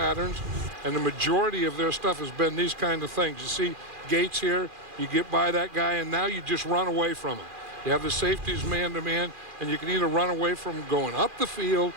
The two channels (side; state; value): left; late; 2.4 ms